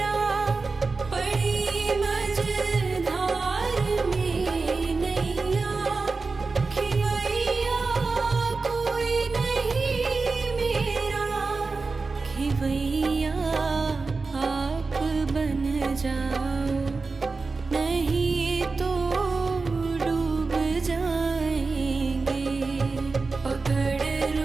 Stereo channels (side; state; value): left; quieter; 4.1 dB